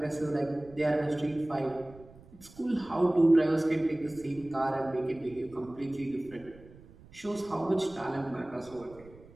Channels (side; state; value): right; noise; rumble, 22 dB below the sound